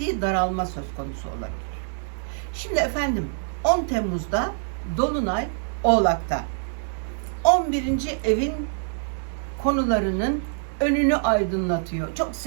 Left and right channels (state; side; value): silent; left; digital silence